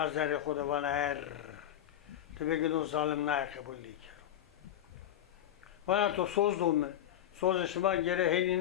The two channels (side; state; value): right; quieter; 11.4 dB